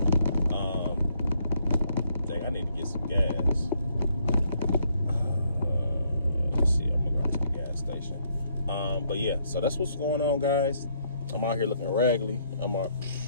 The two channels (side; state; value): both; inverted; correlation -0.70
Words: I need to get some gas. Let's see, I'm gonna go to the gas station. But yeah, so that's what's going on, guys. I'm out here looking raggedy. I'm